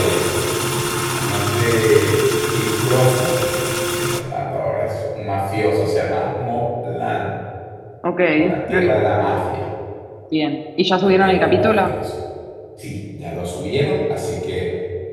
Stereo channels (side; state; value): both; identical; correlation 1.00